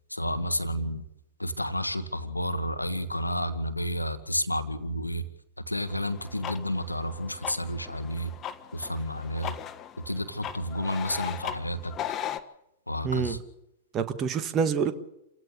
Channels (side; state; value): both; inverted; correlation -0.48